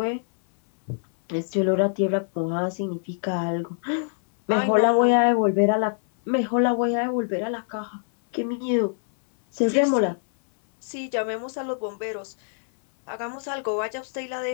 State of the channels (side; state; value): right; silent; 61 dB below the other